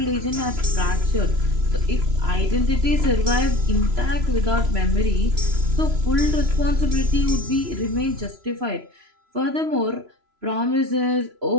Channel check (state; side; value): late; left; 3.0 ms